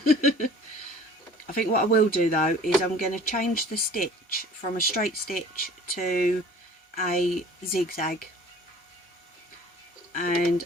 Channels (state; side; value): normal; both; correlation 0.47